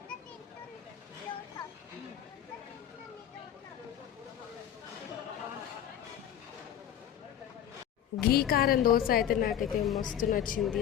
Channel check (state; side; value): quieter; right; 10.2 dB